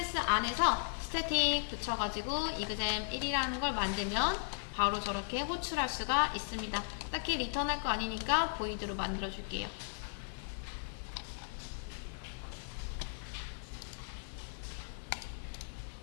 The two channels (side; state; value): right; silent; 53 dB below the other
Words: 안에서 스태틱 붙여가지고 이그잼 1이라는 걸 만들면 바로 저렇게 호출할 수가 있습니다. 딱히 리턴할 거 아니니까 보이드로 만들어 줄게요.